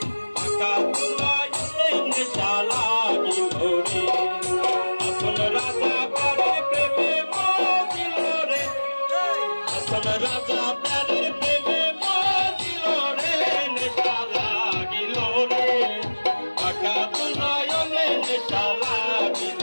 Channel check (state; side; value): inverted; both; correlation -1.00